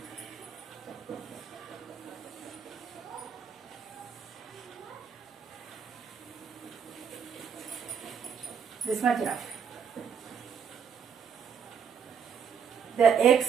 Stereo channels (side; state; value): left; quieter; 7.0 dB